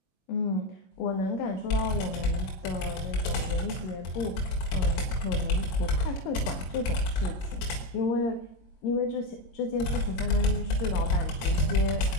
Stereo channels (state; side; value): late; right; 22 ms